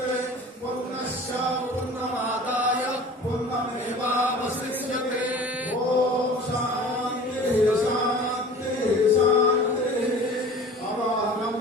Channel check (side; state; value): both; normal; correlation 0.42